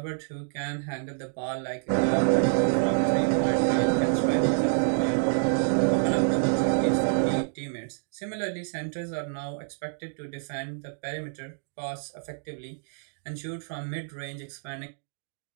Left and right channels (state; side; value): silent; left; digital silence